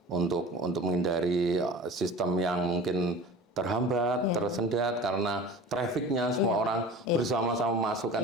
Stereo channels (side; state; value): both; normal; correlation 0.38